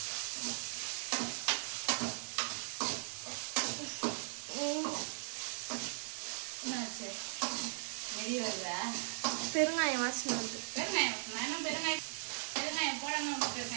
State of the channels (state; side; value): silent; left; 52 dB below the other